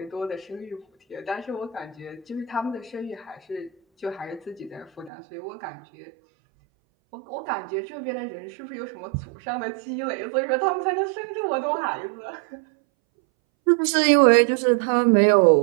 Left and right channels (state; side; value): drops out; left; at 5.1 s